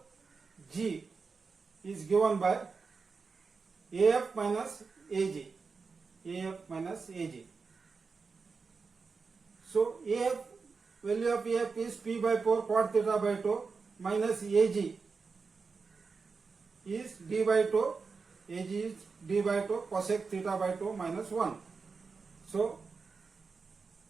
is given by AF minus AG. AF minus AG. So AF, value of AF is P by 4 cot theta by 2 minus AG is D by 2. AG is D by 2 cosec theta by 2 minus 1. So,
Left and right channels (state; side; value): quieter; left; 4.8 dB